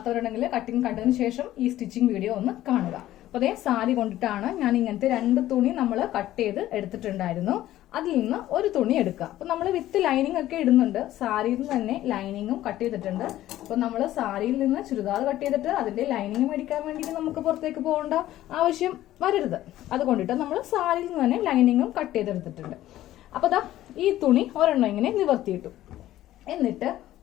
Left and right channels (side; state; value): right; quieter; 14.1 dB